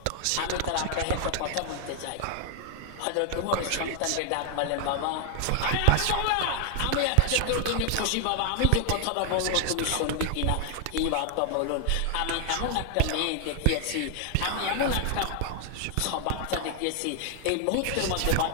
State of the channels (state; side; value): different; both; correlation 0.00